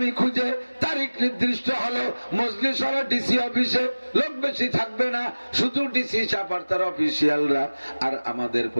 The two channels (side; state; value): both; inverted; correlation -1.00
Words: খুঁজে। তারিখ নির্দিষ্ট হলো, মজলিস হলো ডিসি অফিসে, লোক বেশি থাকবে না, শুধু ডিসি চাপার তার অফিসিয়ালরা। আর আমাদের